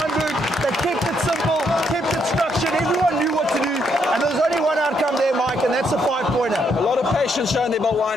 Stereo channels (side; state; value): both; normal; correlation 0.74